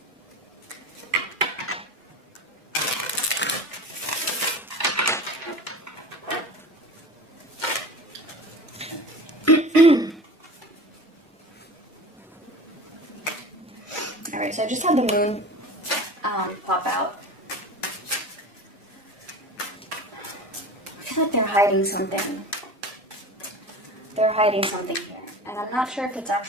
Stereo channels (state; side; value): normal; both; correlation 0.34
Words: All right, so I just had the moon pop out. I feel like they're hiding something. They're hiding something here. And I'm not sure if it's